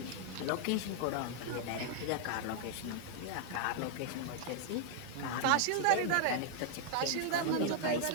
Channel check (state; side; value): different; both; correlation 0.00